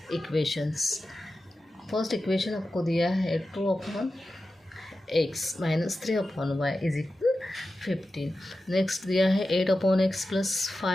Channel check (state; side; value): normal; both; correlation 0.93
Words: equations. First equation आपको दिया है 2/x minus 3/y is equal 15। Next दिया है 8/x plus